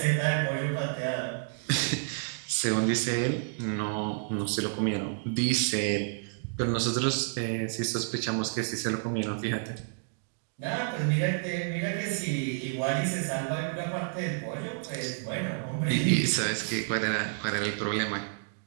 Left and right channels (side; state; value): left; silent; digital silence